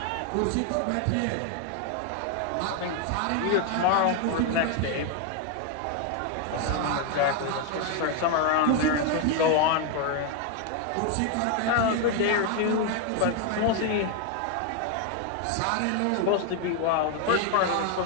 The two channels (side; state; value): both; different; correlation 0.01